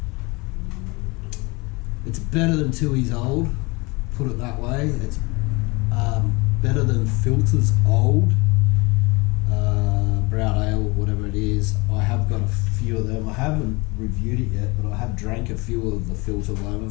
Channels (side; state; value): right; quieter; 26.0 dB